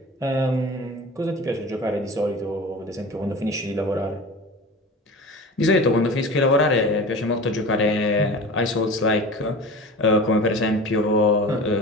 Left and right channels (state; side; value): normal; both; correlation 0.35